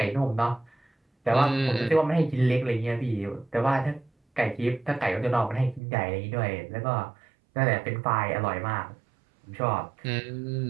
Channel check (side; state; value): left; drops out; at 5.8 s